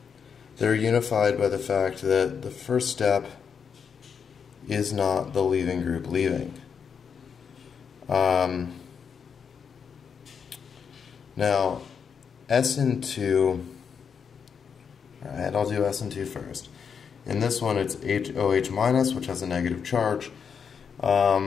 they're unified by the fact that the first step is not the leaving group leaving. Now, Sn2, alright, I'll do Sn2 first. In this one, it's HOH minus, which has a negative charge.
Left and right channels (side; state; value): right; quieter; 6.7 dB